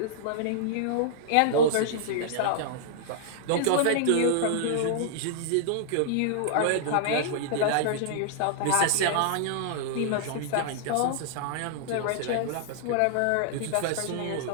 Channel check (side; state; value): both; different; correlation -0.01